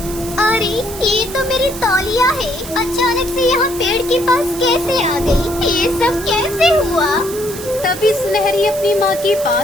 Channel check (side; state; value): right; noise; hiss, 12 dB below the sound